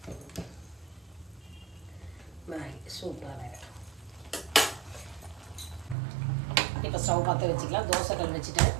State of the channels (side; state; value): left; drops out; at 6.0 s